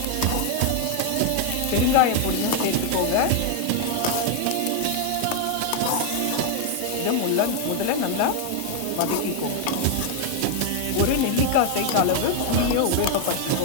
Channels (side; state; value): both; different; correlation 0.00